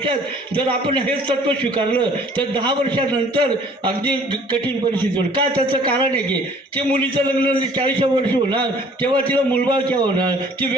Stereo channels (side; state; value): both; normal; correlation 0.54